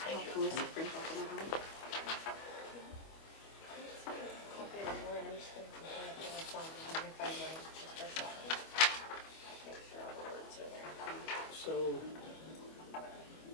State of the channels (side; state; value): right; late; 25 ms